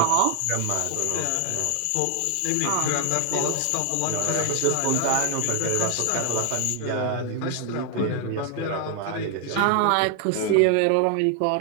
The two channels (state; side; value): different; both; correlation 0.00